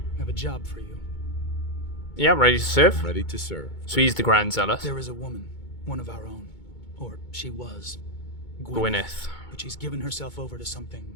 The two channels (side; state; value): right; late; 2.2 ms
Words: I have a job for you. Yeah, ready to serve? Ready to serve. So he's the Grand Zealot. There is a woman, one of our own. Or she was. Gwyneth. But she's given herself over to